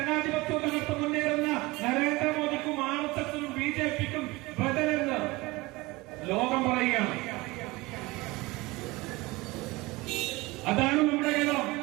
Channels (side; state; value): left; quieter; 22.1 dB